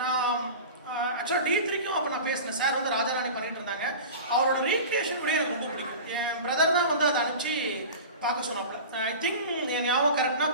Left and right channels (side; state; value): both; inverted; correlation -0.34